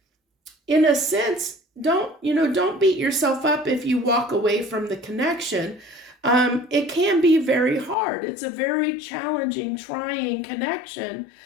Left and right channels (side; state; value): right; drops out; at 8.0 s